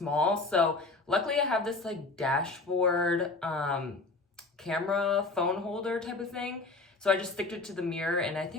So luckily I have this like dashboard camera phone holder type of thing, so I just stick it to the mirror and I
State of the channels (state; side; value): quieter; right; 3.5 dB